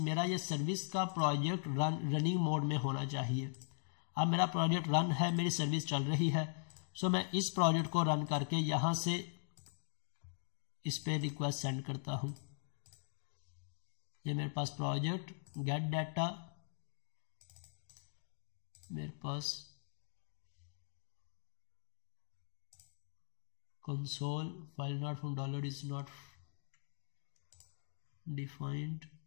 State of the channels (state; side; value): silent; right; digital silence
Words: ये सर्विस का प्रोजेक्ट रनिंग मोड में होना चाहिए। अब मेरा प्रोजेक्ट रन है, मेरी सर्विस चल रही है, सो मैं इस प्रोजेक्ट को रन करके यहाँ से इस पे रिक्वेस्ट सेंड करता हूँ। ये मेरे पास प्रोजेक्ट गेट डाटा, मेरे पास console file not from dollar is not defined,